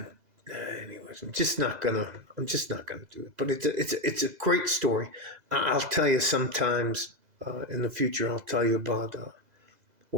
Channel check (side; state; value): left; late; 2.0 ms